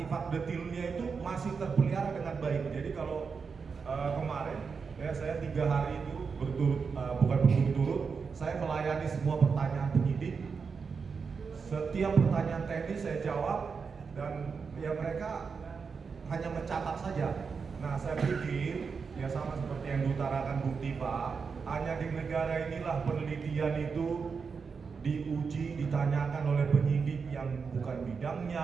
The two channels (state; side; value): quieter; left; 5.4 dB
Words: detailnya itu masih terpelihara dengan baik. Jadi kalau kemarin ya saya 3 hari itu berturut-turut saya melayani semua pertanyaan penyidik. Setiap pertanyaan teknis saya jawab dan ya mereka hanya mencatat saja. Nah, saya pikir ya sama seperti yang diutarakan Bung Tifa, hanya di negara inilah penelitian itu diuji, ditanyakan oleh penyidik yang bukan